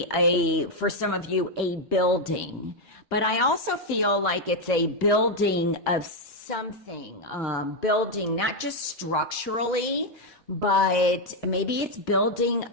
for some of you, a building. But I also feel like it's a building of something. Building, not just structurally, but maybe it's building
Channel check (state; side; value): normal; both; correlation 0.02